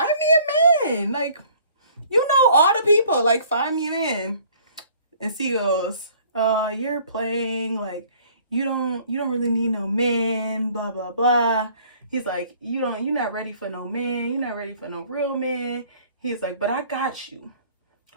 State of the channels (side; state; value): both; inverted; correlation -0.55